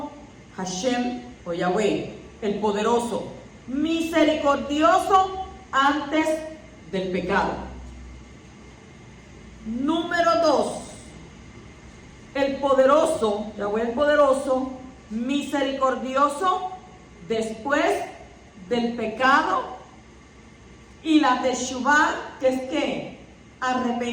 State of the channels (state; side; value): identical; both; correlation 1.00